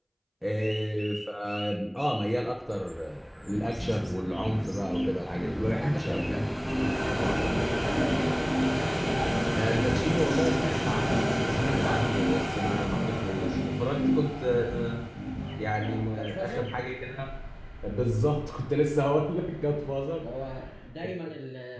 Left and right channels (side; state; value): both; identical; correlation 1.00